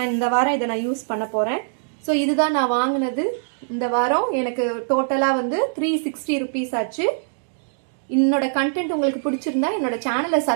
இந்த வாரம் இதை நான் யூஸ் பண்ண போறேன். ஸோ இதுதான் நான் வாங்கினது இந்த வாரம். எனக்கு டோட்டலா வந்து 360 ருபீஸ் ஆச்சு. என்னோட கண்டென்ட் உங்களுக்கு பிடிச்சிருந்தா என்னோட சேனலை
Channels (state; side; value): silent; left; digital silence